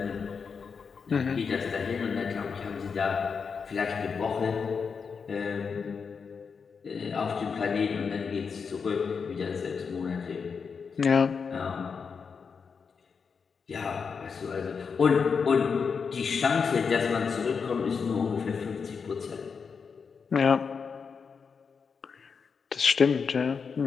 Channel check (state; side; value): quieter; right; 5.7 dB